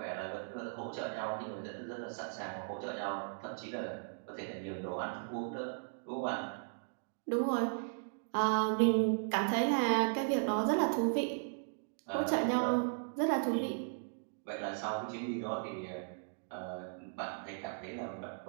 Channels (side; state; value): left; silent; digital silence